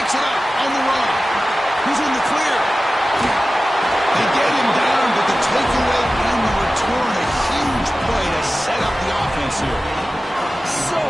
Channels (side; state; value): both; normal; correlation 0.95